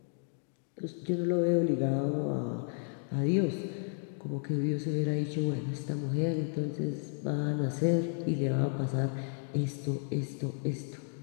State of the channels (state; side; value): silent; right; 56 dB below the other